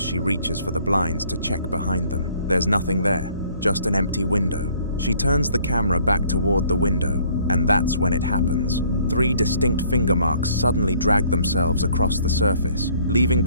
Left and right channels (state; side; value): inverted; both; correlation -0.60